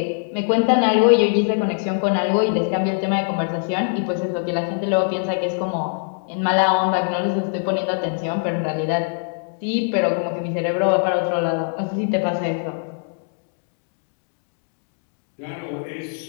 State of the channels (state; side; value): silent; right; digital silence